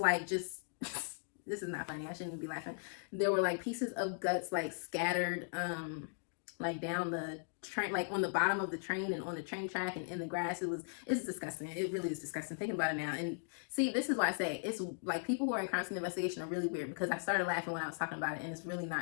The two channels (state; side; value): silent; right; digital silence